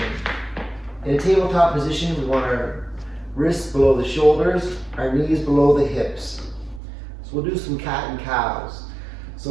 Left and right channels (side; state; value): left; drops out; at 6.8 s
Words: In a tabletop position, we want our wrists below the shoulders, our knees below the hips. So we'll do some cat and cows. So